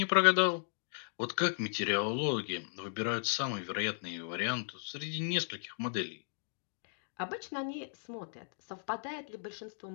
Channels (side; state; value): right; silent; digital silence